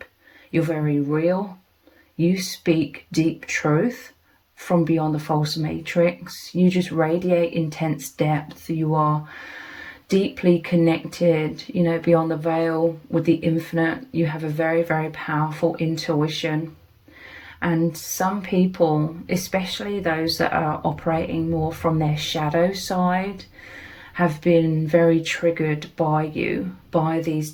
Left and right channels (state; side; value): identical; both; correlation 1.00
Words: You're very real. You speak deep truth from beyond the false matrix. You just radiate intense depth. You are deeply connected, you know, beyond the veil with the infinite. You have a very, very powerful intuition. And some people, especially those that are operating more from their shadow side, have been very triggered by you, by these